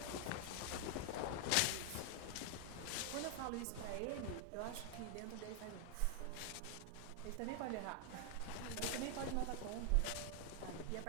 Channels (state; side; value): different; both; correlation 0.00